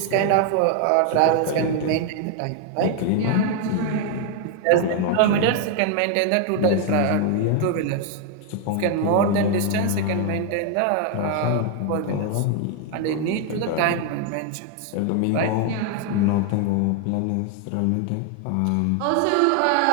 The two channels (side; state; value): both; different; correlation 0.01